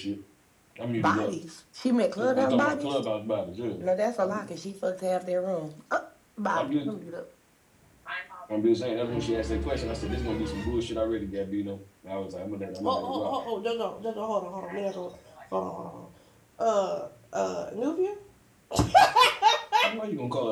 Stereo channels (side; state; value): both; identical; correlation 1.00